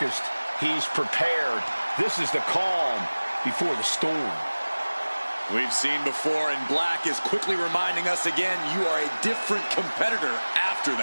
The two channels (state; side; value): inverted; both; correlation -1.00